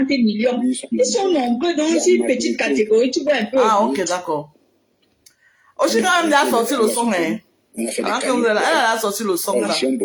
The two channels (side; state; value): both; identical; correlation 1.00